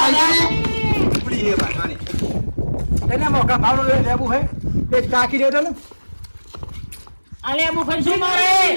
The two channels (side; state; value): both; inverted; correlation -1.00